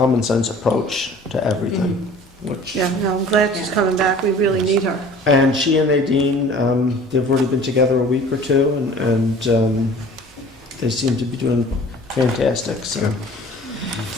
sense approach to everything. Which, Yeah, no, I'm glad she's coming back. We really need her. and she and Nadine, they've already been together a week or two, and they seem to be doing fantastic. So,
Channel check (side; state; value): both; normal; correlation 0.47